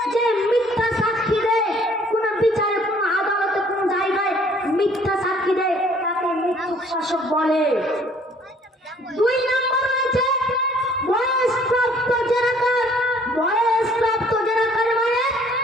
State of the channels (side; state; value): both; normal; correlation 0.58